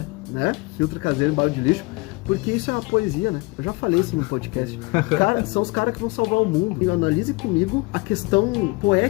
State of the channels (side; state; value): right; quieter; 26.1 dB